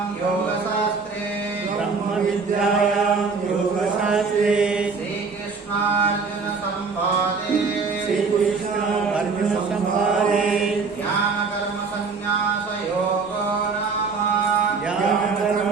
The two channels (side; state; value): left; quieter; 4.8 dB